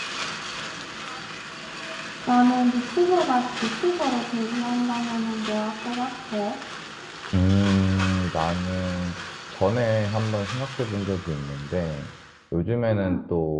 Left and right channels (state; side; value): identical; both; correlation 1.00